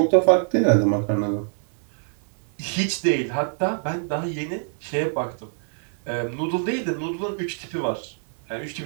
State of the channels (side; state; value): left; silent; digital silence